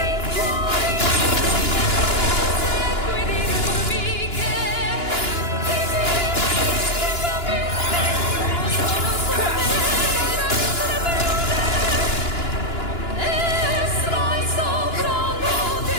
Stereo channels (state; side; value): late; right; 2.9 ms